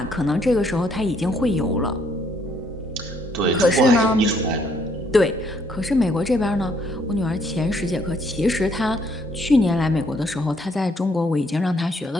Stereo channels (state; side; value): normal; both; correlation 0.68